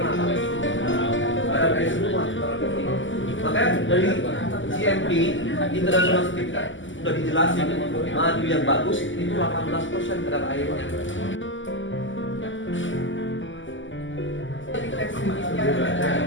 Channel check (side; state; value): right; late; 0.55 ms